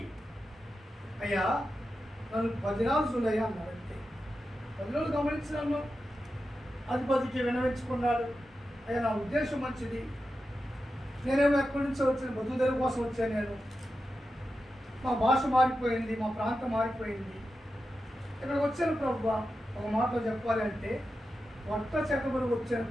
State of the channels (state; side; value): normal; both; correlation 0.90